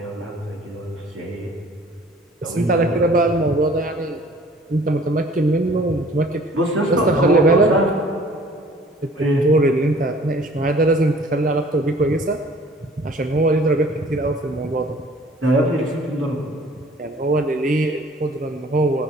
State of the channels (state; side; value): normal; both; correlation 0.52